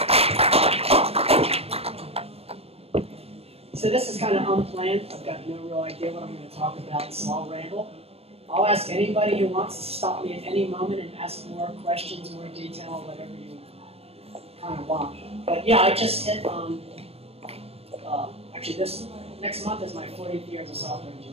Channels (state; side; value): late; left; 0.29 ms